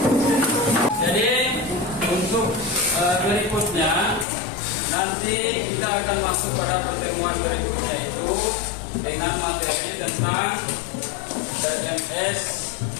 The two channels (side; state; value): right; drops out; at 4.2 s